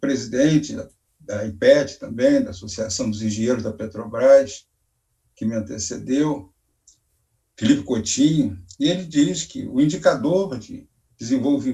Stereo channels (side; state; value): both; identical; correlation 1.00